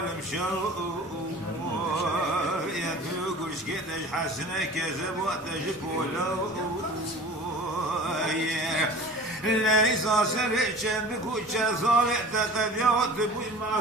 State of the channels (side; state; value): both; normal; correlation 0.41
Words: شو يا تقولش كدش حسنة كذب وتجبولو ليس سرعشن بكوشة صالح تقديات بوي